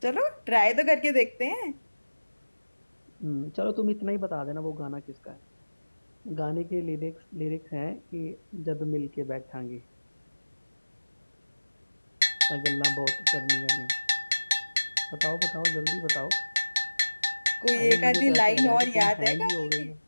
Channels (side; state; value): both; inverted; correlation -1.00